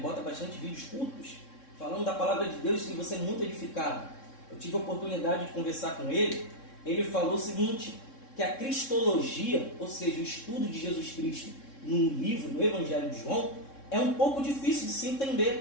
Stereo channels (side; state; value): right; late; 3.7 ms